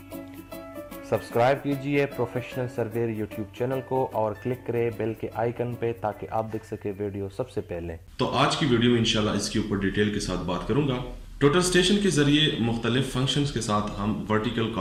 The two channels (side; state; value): both; identical; correlation 1.00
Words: सब्सक्राइब कीजिए प्रोफेशनल सर्वेयर यूट्यूब चैनल को और क्लिक करें बेल के आइकन पे ताकि आप देख सके वीडियो सबसे पहले। तो आज की वीडियो में इंशाल्लाह इसके ऊपर डिटेल के साथ बात करूंगा। टोटल स्टेशन के जरिए मुख्तलिफ फंक्शंस के साथ हम वर्टिकल